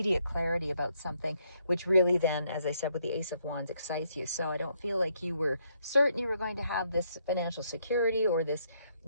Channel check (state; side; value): inverted; both; correlation -0.73